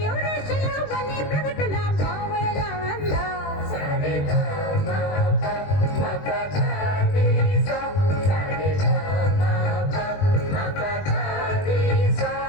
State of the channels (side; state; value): right; late; 21 ms